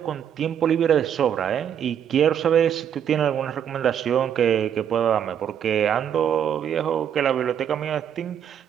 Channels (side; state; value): left; quieter; 8.9 dB